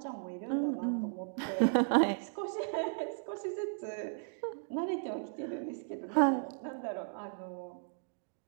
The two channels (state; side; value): silent; left; digital silence